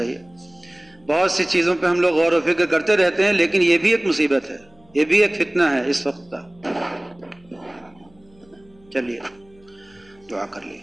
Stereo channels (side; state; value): left; noise; hum, 30 dB below the sound